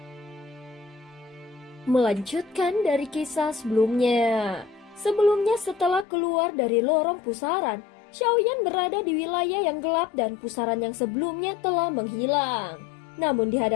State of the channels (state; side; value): drops out; right; at 6.1 s